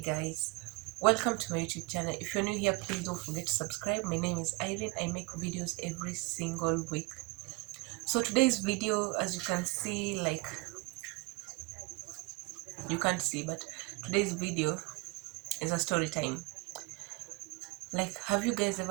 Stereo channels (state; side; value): quieter; left; 26.8 dB